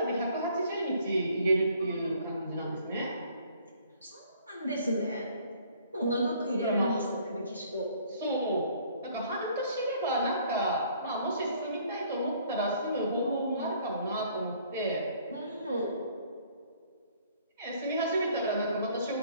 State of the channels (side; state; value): both; inverted; correlation -0.59